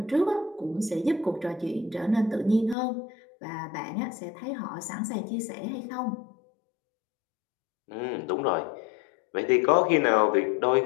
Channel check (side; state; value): right; drops out; at 2.8 s